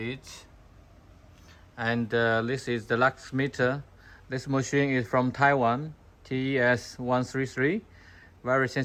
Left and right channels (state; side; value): identical; both; correlation 1.00